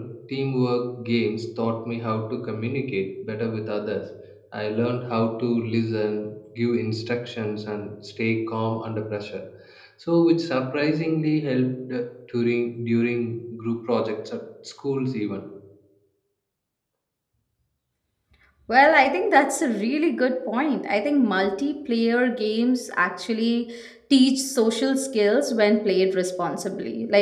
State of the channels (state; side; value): identical; both; correlation 1.00